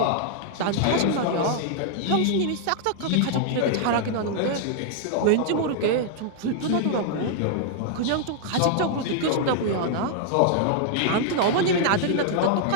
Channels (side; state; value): both; different; correlation -0.01